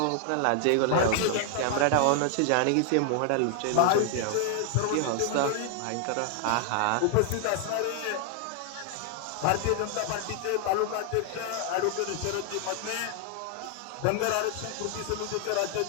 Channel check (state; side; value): different; both; correlation 0.00